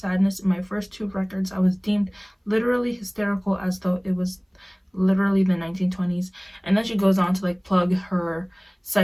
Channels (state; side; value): identical; both; correlation 1.00